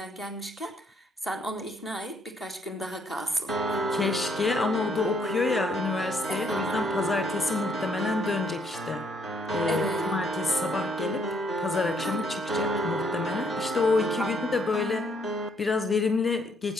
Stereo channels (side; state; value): both; normal; correlation 0.70